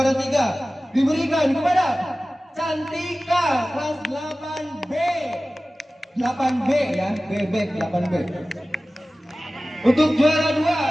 3 diberikan kepada Cantika kelas 8B. 8B ya, BB 8B. Untuk juara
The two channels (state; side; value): normal; both; correlation 0.97